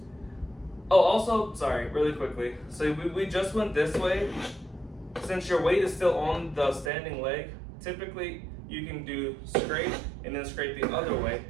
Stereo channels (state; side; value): drops out; left; at 6.9 s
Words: oh, also, sorry, really quickly. So we just went this way. Since your weight is still on the standing leg, typically you can do scrape and then scrape the other way.